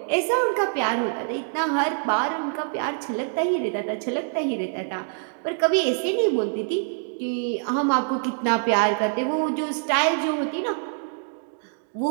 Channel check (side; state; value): left; silent; digital silence